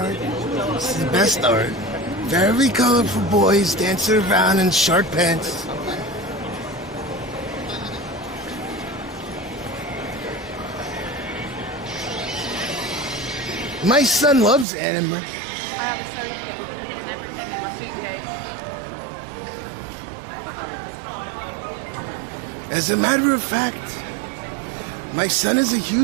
It's the best art. Very colorful boys dancing around in short pants. My son loves anime. As a matter of fact, my son is a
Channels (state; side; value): drops out; left; at 14.7 s